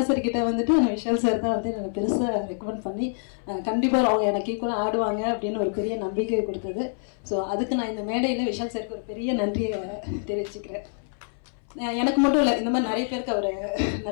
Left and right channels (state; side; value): silent; right; 60 dB below the other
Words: சார் கிட்ட வந்துட்டு நான் விஷால் சார் தான் வந்து எனக்கு பெருசாக ரெக்கமெண்ட் பண்ணி கண்டிப்பாக அவங்க எனக்கு ஈக்குவலாக ஆடுவாங்க அப்படின்னு ஒரு பெரிய நம்பிக்கை கொடுத்தது. ஸோ அதுக்கு நான் இந்த மேடையில் விஷால் சாருக்கு ஒரு பெரிய நன்றியை தெரிவிச்சுக்கிறேன். எனக்கு மட்டும் இல்லை, இந்த மாதிரி நிறைய பேருக்கு அவர்